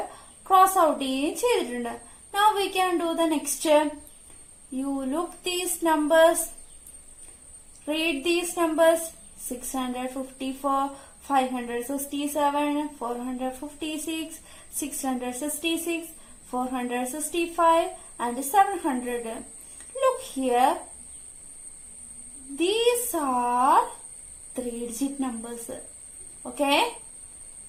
cross out ചെയ്യുകയും ചെയ്തിട്ടുണ്ട്. Now we can do the next. You look these numbers. Read these numbers. 654, 567, 456, 666, 465 and 700. Look here. These are 3-digit numbers. Okay.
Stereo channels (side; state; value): both; identical; correlation 1.00